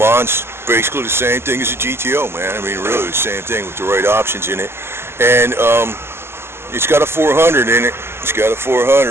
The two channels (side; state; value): left; late; 0.12 ms